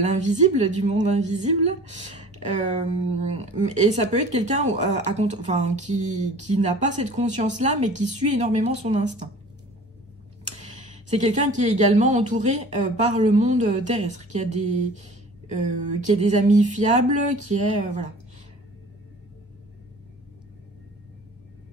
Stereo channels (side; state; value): both; normal; correlation 0.44